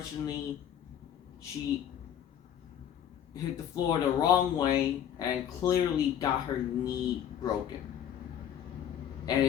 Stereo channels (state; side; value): quieter; right; 9.7 dB